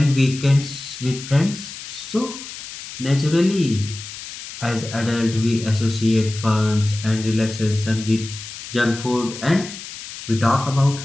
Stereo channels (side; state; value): left; noise; hiss, 12 dB below the sound